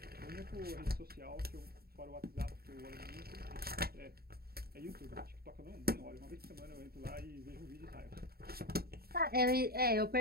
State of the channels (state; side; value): late; left; 0.45 ms